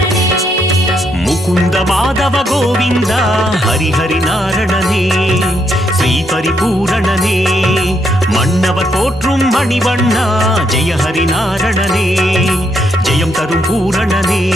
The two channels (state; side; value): normal; both; correlation 0.76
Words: முகுந்த மாதவ கோவிந்தா ஹரிஹரி நாரணனே ஸ்ரீ பரிபூரணனே மன்னவர் போற்றும் மணிவண்ணா ஜெய ஹரி நாரணனே ஜெயம் தரும் பூரணனே